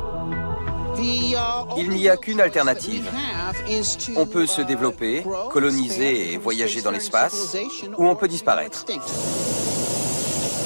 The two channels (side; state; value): both; inverted; correlation -1.00